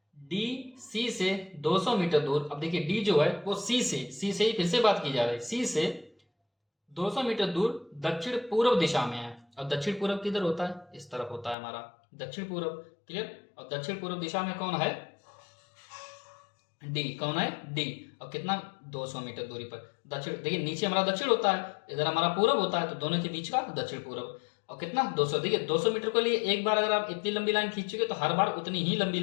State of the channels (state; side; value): drops out; right; at 11.6 s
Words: डी सी से 200 मीटर दूर। अब देखिए डी जो है वो सी से ही फिर से बात की जा रही है। सी से 200 मीटर दूर दक्षिण पूर्व दिशा में है। और दक्षिण पूर्व किधर होता है? इस तरफ होता है हमारा दक्षिण पूर्व। क्लियर? और दक्षिण पूर्व दिशा में कौन है? डी। कौन है? डी। और कितना? 200 मीटर दूरी पर दक्षिण। देखिए नीचे हमारा दक्षिण होता है, इधर हमारा पूर्व होता है, तो दोनों के बीच का दक्षिण पूर्व। और कितना? 200। देखिए 200 मीटर के लिए एक बार अगर आप इतनी लंबी लाइन खींचोगे तो हर बार उतनी ही लंबी